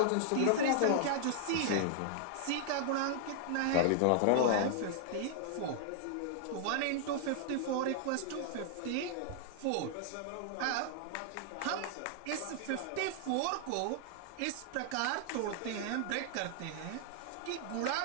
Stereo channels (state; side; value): different; both; correlation -0.01